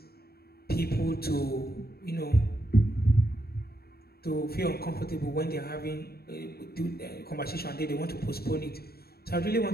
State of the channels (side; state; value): right; late; 0.45 ms